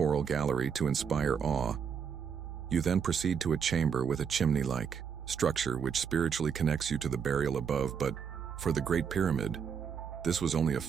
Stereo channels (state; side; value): quieter; left; 7.0 dB